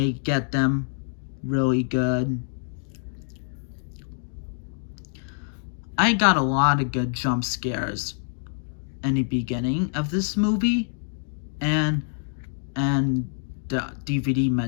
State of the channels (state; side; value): silent; right; 61 dB below the other